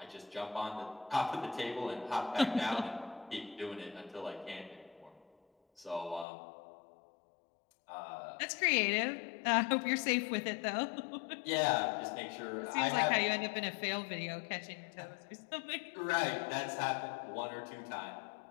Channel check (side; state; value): right; drops out; at 6.2 s